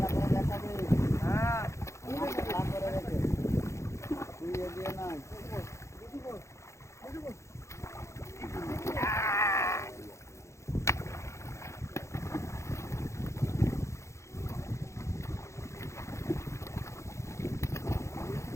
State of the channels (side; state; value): right; late; 0.14 ms